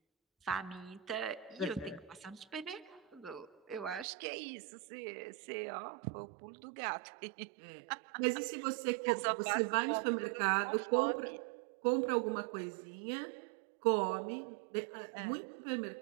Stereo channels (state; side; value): drops out; left; at 4.0 s